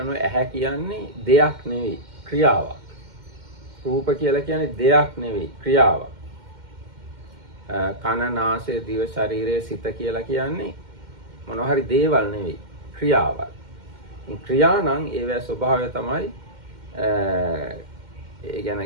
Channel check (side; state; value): left; late; 2.1 ms